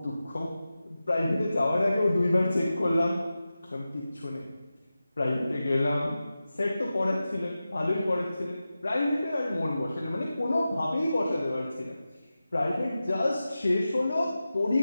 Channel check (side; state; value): both; inverted; correlation -0.94